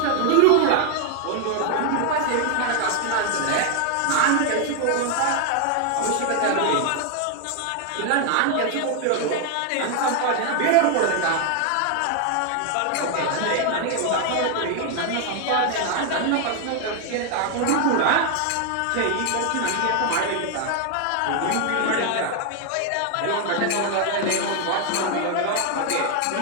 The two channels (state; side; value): different; both; correlation 0.01